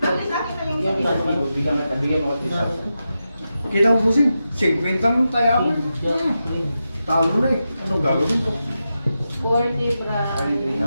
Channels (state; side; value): inverted; both; correlation -0.89